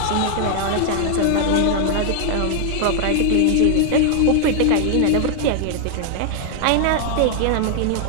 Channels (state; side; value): different; both; correlation 0.00